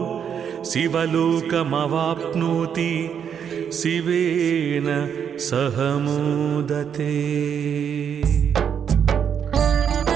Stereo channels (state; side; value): quieter; left; 7.9 dB